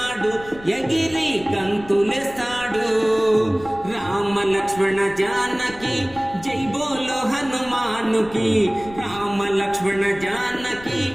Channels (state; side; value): noise; left; rumble, 19 dB below the sound